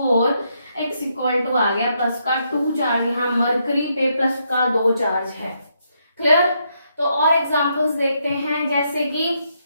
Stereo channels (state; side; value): inverted; both; correlation -0.77